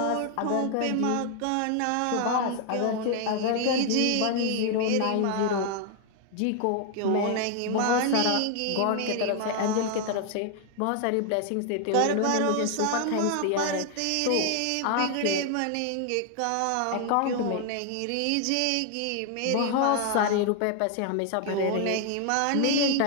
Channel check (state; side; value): different; both; correlation 0.00